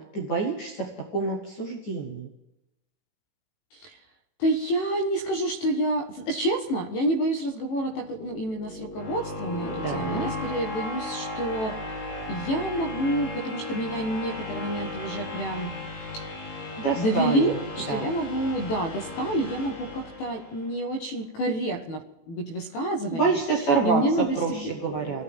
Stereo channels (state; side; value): late; right; 18 ms